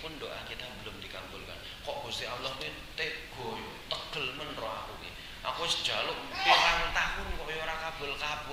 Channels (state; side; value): identical; both; correlation 1.00